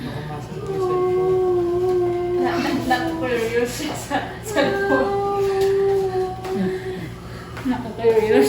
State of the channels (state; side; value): identical; both; correlation 1.00